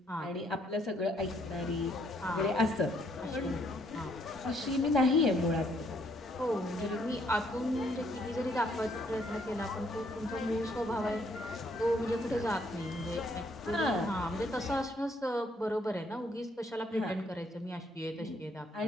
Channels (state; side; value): normal; both; correlation 0.69